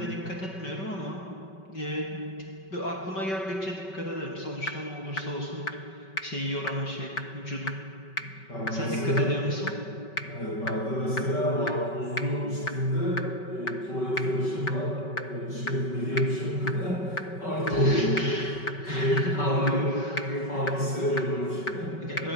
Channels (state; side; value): late; right; 5.3 ms